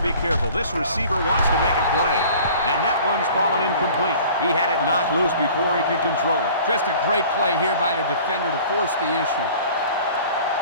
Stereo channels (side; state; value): both; inverted; correlation -0.47